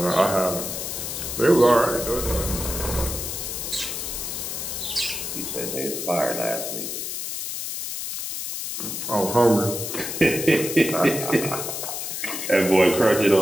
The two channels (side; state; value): left; noise; hiss, 5 dB below the sound